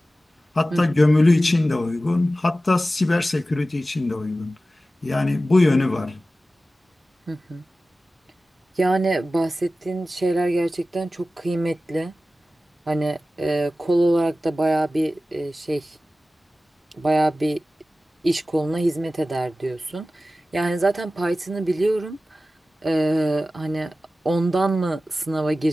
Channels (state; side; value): normal; both; correlation 0.95